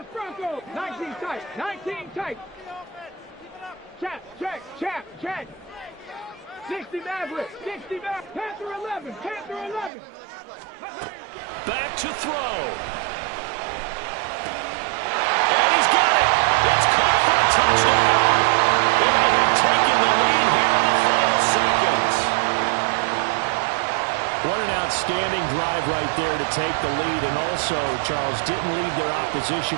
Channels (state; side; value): drops out; left; at 9.9 s